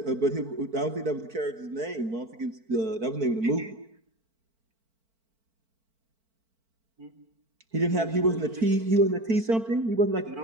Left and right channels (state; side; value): late; left; 4.5 ms